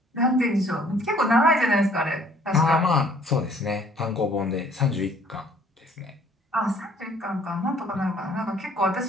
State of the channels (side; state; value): both; normal; correlation 0.58